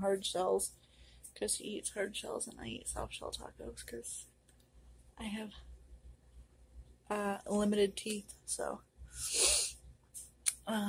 hard shells, because he eats hard shells and I eat soft shell tacos, because I have limited teeth, so.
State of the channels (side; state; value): both; identical; correlation 1.00